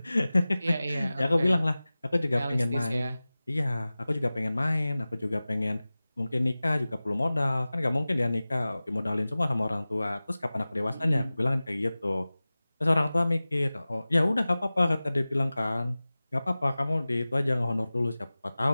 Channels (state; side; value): inverted; both; correlation -0.98